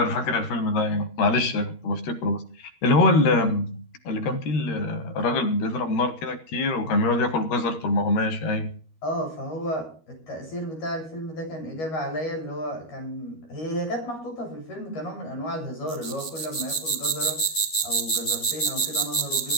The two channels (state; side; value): late; right; 13 ms